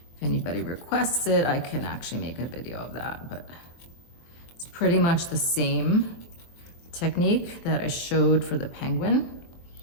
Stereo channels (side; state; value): right; late; 23 ms